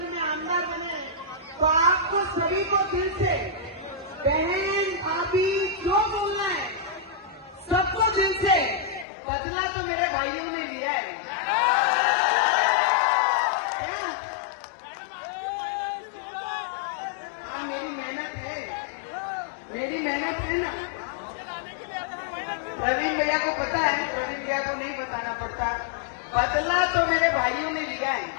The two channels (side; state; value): right; drops out; at 9.1 s